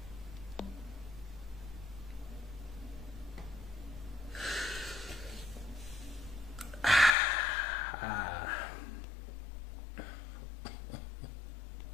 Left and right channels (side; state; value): right; drops out; at 7.2 s